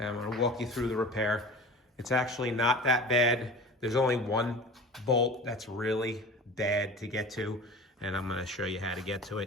I'm gonna walk you through the repair. It's actually not that bad. There's only one bolt that's really bad to get to, and I'm gonna show you how to get to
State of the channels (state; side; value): normal; both; correlation 0.37